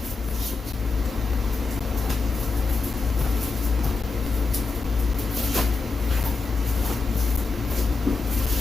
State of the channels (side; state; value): right; quieter; 4.1 dB